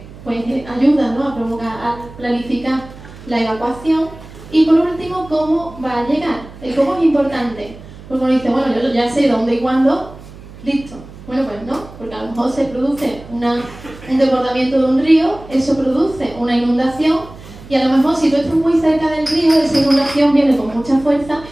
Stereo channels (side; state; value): right; noise; hum, 17 dB below the sound